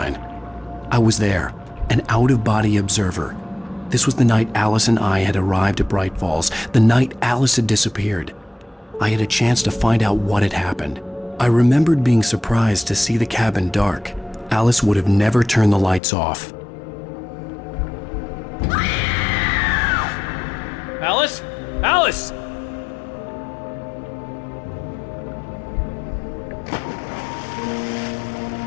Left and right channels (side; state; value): right; drops out; at 16.0 s